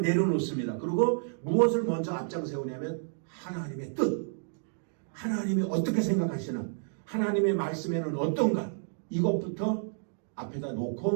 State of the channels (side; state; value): left; silent; digital silence